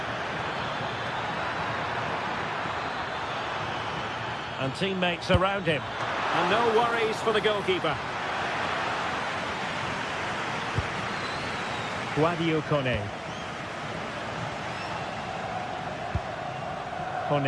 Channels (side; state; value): both; identical; correlation 1.00